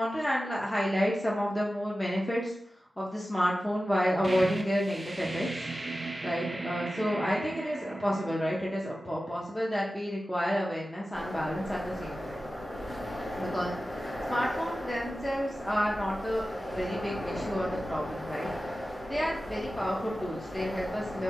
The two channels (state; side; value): normal; both; correlation 0.94